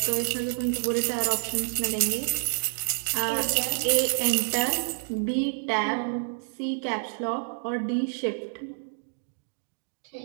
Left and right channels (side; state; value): left; silent; digital silence